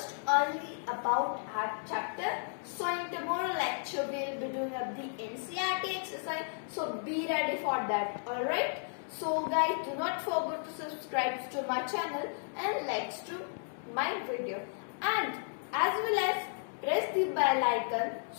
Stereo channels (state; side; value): silent; right; digital silence